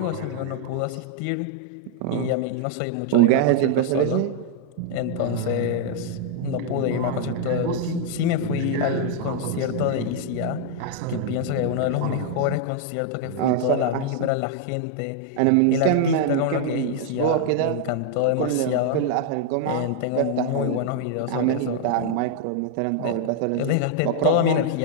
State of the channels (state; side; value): different; both; correlation 0.00